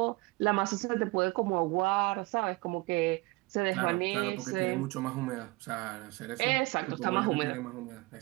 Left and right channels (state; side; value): quieter; left; 24.3 dB